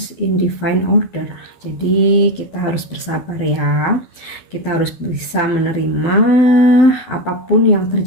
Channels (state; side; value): late; right; 12 ms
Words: in divine order. Jadi kita harus bersabar ya. Kita harus bisa menerima apapun yang